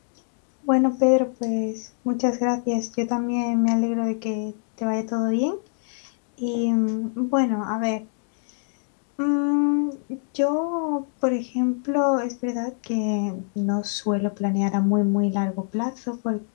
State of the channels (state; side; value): silent; right; 62 dB below the other